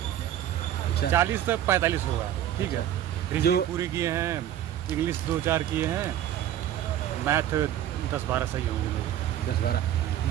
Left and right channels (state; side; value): quieter; left; 11.5 dB